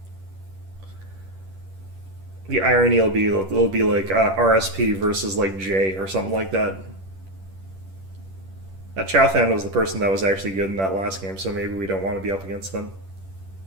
The irony will be it'll be like RSP versus like J or something like that. That Chowthan was the person that was actually good in that last game, so maybe we don't want to be up against them.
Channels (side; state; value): left; late; 10 ms